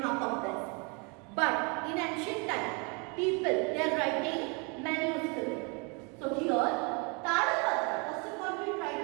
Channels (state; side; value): quieter; left; 32.8 dB